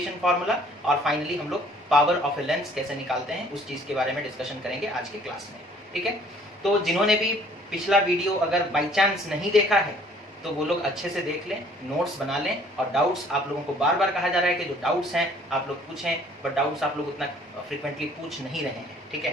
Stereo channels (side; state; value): both; normal; correlation 0.57